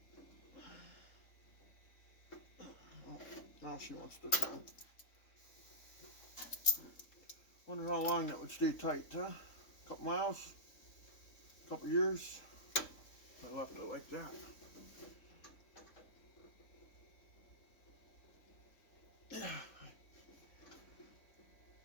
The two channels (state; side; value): late; right; 3.8 ms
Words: Oh, now she wants to come. Wonder how long that would stay tight, huh? A couple miles? A couple years? I left it like that.